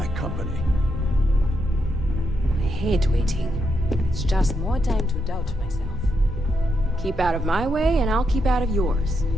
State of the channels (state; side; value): normal; both; correlation 0.81